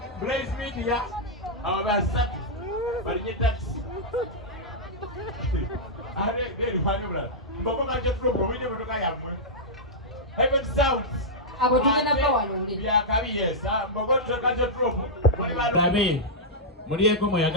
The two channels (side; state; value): both; normal; correlation -0.08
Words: Blaze Media abasatu balinye taxi. Are deri fanubra. Mboko kaje flow wije motoka yamwe. Even sounds. Abo tugenda bawalonde. Byakabi yes. Mboko kaje flow. Nabe. Mulieko